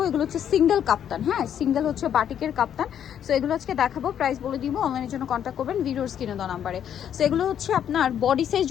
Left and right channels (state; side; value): quieter; right; 9.4 dB